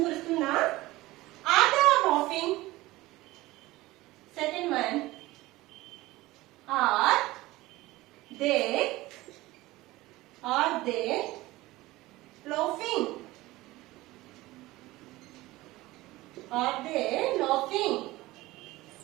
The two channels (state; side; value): quieter; left; 18.8 dB